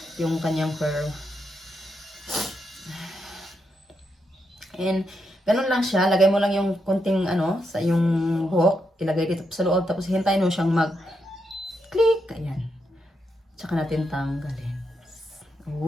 yung kanyang curl. And ganun lang siya, lagay mo lang yung konting sa yung buhok, ilagay dito sa loob tapos hintayin mo siyang mag-click, ayan. Tsaka natin tanggalin.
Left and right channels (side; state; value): both; normal; correlation 0.82